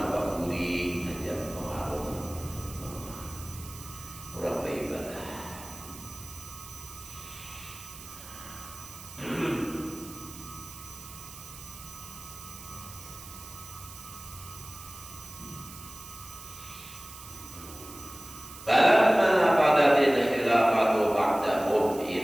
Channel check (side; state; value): right; noise; hiss, 14 dB below the sound